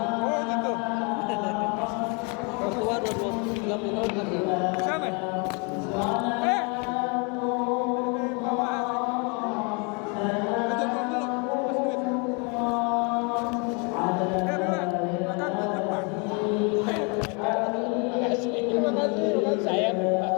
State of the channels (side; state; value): right; quieter; 33.7 dB